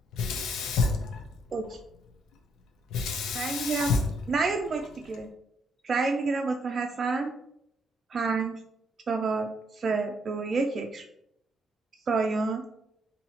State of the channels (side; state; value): both; normal; correlation 0.73